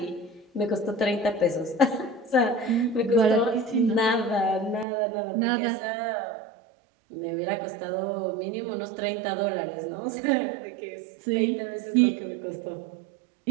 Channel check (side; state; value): left; drops out; at 4.9 s